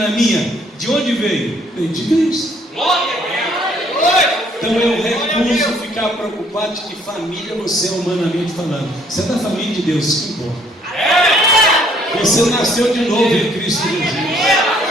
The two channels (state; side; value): normal; both; correlation 0.64